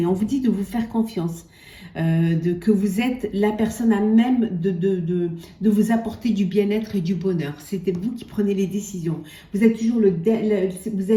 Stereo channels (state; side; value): identical; both; correlation 1.00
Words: On vous dit de vous faire confiance. Que vous êtes la personne à même de vous apporter du bien-être et du bonheur. C'était vous qui prenez les décisions. Vous êtes toujours vous